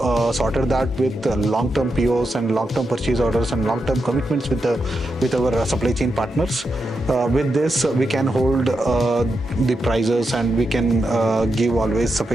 sorted that with long-term POs and long-term purchase orders and long-term commitments with our supply chain partners. With this, we can hold the prices, and we can always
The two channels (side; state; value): both; normal; correlation 0.86